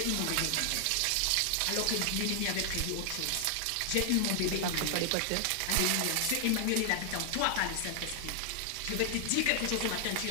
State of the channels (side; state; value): both; different; correlation 0.00